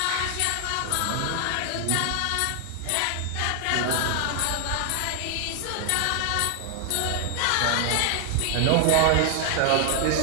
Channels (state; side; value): different; both; correlation 0.00